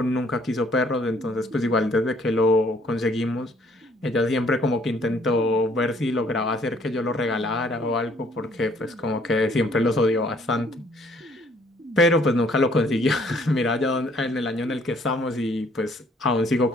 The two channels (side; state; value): both; normal; correlation 0.62